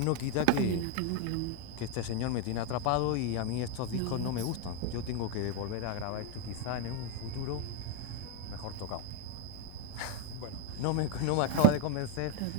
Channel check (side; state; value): both; different; correlation 0.01